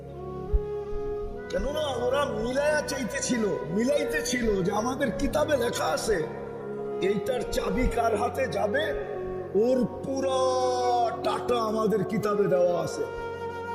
কেননা ওরা মিলাইতেছিল যে আমাদের কিতাবে লেখা আছে এইটার চাবি কার হাতে যাবে, ওর পুরো ডাটা আমাদের কিতাবে দেওয়া আছে,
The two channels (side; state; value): both; identical; correlation 1.00